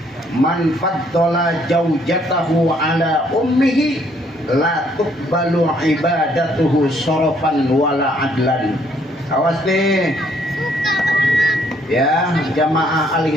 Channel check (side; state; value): both; normal; correlation 0.66